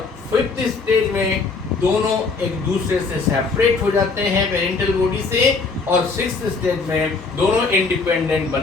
फिफ्थ स्टेज में दोनों एक दूसरे से सेपरेट हो जाते हैं पेरेंटल बॉडी से, और सिक्स्थ स्टेज में दोनों इंडिपेंडेंट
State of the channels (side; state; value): right; quieter; 4.2 dB